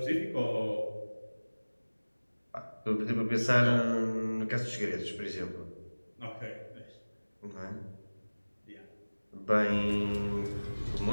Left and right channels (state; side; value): inverted; both; correlation -1.00